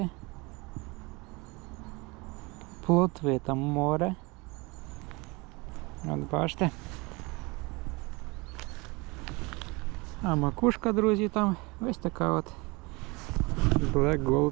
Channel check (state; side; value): quieter; left; 25.8 dB